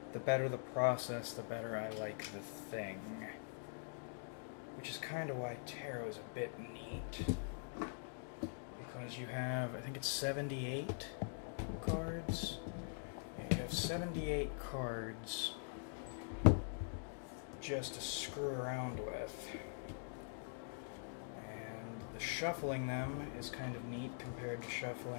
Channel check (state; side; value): silent; right; digital silence